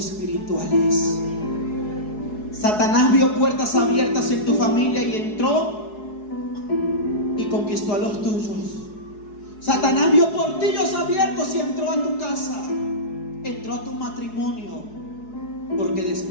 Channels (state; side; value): late; right; 4.7 ms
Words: Satanás vio puertas abiertas en tu familia y entró y conquistó a los tuyos. Satanás vio portillos abiertos y entró a tu casa, entró a tu matrimonio, porque